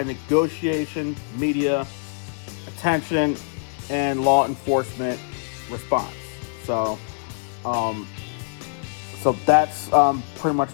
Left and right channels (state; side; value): silent; right; 63 dB below the other